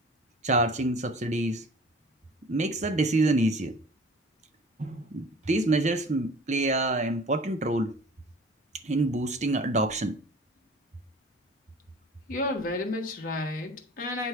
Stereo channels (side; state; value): both; normal; correlation 0.44